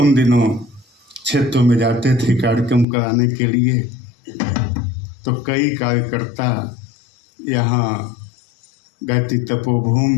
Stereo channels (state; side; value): drops out; right; at 2.9 s